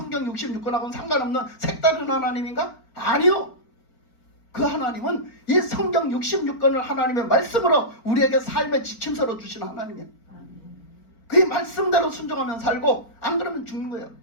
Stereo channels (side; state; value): right; late; 4.4 ms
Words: 66권하고는 상관없는 색다른 하나님인가? 아니요. 그 하나님은 이 성경 66권을 하나님의 말씀으로 우리에게 삶의 지침서로 주신 하나님이에요. 그 말씀대로 순종하면 살고 안 그러면 죽는 거예요.